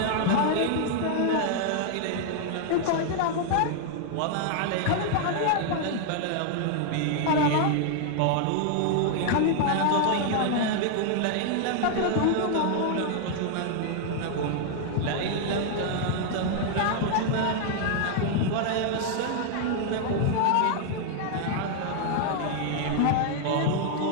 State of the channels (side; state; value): both; different; correlation 0.00